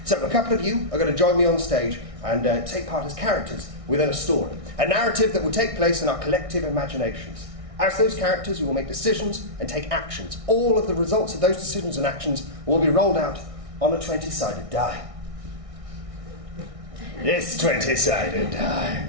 So a couple of you are going to join me on stage and take part as characters within a story. A narrative that will take place in our collective imaginations. As those characters, you will make decisions and take actions. All of the results of those decisions and actions will be rolled out on a 20-sided die. This 20-sided die.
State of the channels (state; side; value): late; left; 1.6 ms